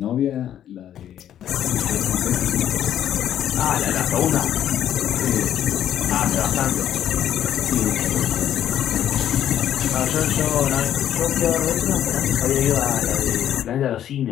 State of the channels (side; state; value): right; quieter; 10.7 dB